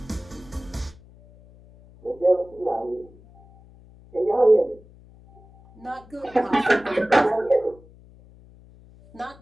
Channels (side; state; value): left; noise; hum, 24 dB below the sound